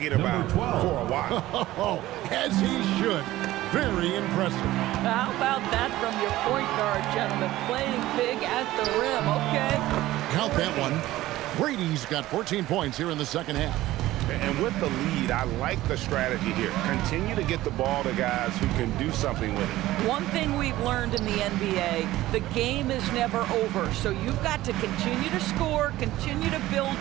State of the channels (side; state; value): left; quieter; 16.1 dB